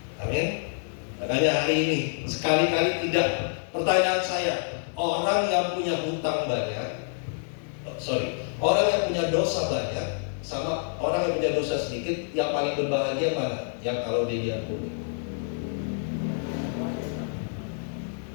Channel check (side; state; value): right; silent; digital silence